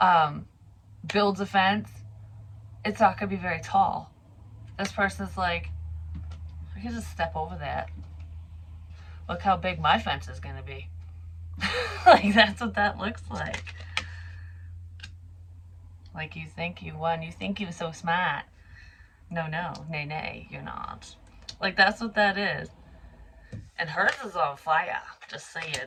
builds a fence, it's not going to be very tall. This person's like, I can just step over that. Look how big my fence is going to be. Like, that's what that looks like. Like, you think you won. You think you're so smart. No, nay, you're not. Like, that's what that is. And hers is on fire. Just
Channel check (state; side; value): identical; both; correlation 1.00